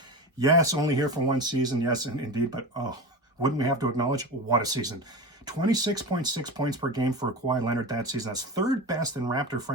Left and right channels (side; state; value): both; normal; correlation 0.26